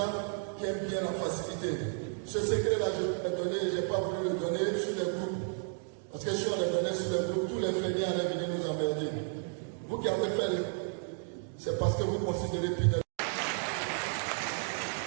qui aiment bien la facilité. Ce secret-là, je vais le donner, je n'ai pas voulu le donner sur les groupes. Parce que si on le donnait sur les groupes, tous les feignants allaient venir nous emmerder. Vous qui avez fait, c'est parce que vous considérez Pinel.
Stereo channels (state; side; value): silent; left; 56 dB below the other